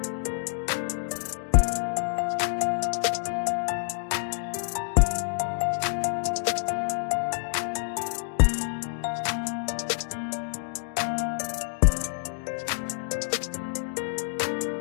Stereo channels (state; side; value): silent; right; digital silence